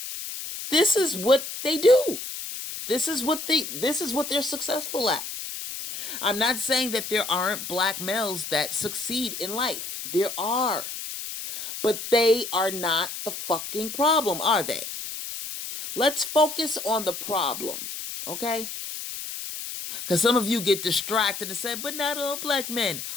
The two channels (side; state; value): left; noise; hiss, 7 dB below the sound